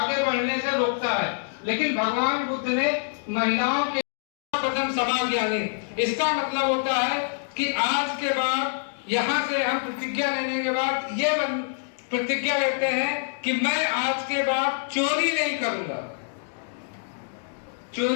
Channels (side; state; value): right; silent; digital silence